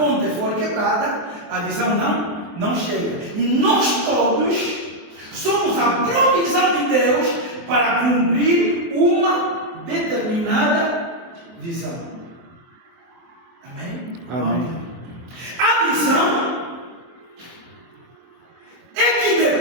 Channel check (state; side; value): late; left; 23 ms